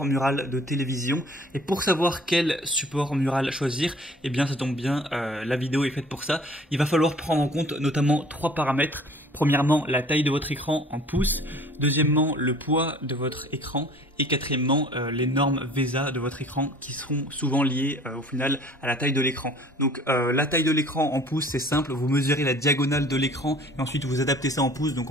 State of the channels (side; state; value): both; normal; correlation 0.50